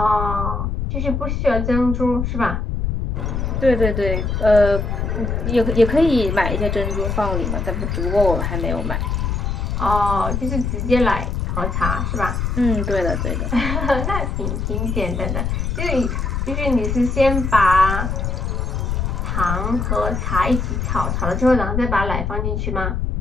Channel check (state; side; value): noise; left; rumble, 1 dB below the sound